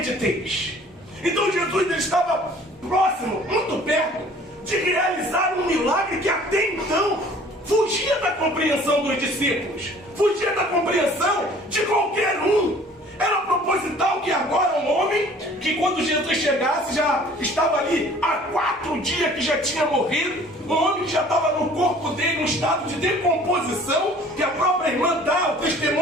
Então Jesus ele estava próximo, muito perto, de realizar um milagre que até então fugia da compreensão dos discípulos, fugia da compreensão de qualquer um. Era proposital que agora um homem, que quando Jesus chegasse já estava ali há 4 dias que já tinha morrido, um homem que já estava no corpo dele, em estado de decomposição, que a própria irmã dá o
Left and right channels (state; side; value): normal; both; correlation 0.51